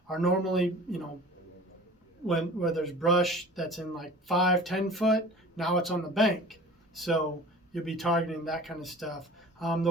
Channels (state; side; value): normal; both; correlation 0.42